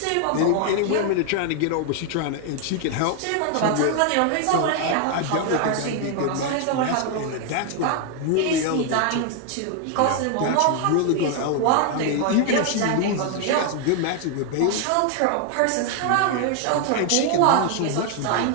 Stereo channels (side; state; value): both; different; correlation 0.00